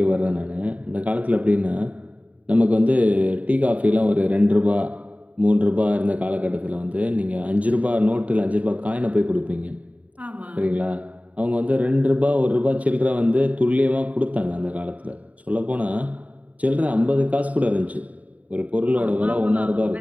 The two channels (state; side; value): late; left; 0.070 ms